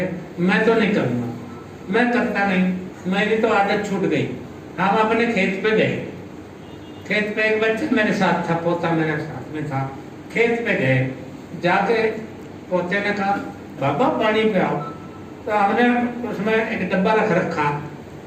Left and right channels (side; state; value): both; identical; correlation 1.00